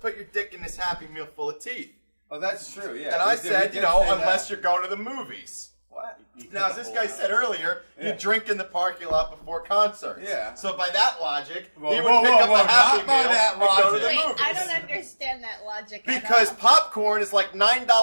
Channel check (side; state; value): both; inverted; correlation -1.00